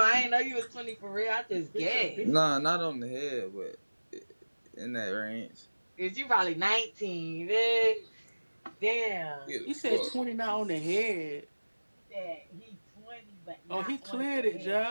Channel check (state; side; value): inverted; both; correlation -1.00